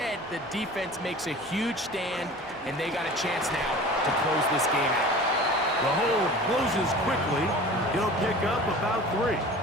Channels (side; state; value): left; noise; hum, 29 dB below the sound